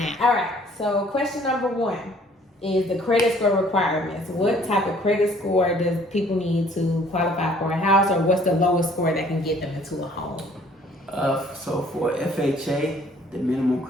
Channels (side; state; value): both; normal; correlation 0.57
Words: All right, so question number one is the credit score requirements. What type of credit score does people need to qualify for a house, or what's the lowest score that can get them into a home? So for FHA, the minimum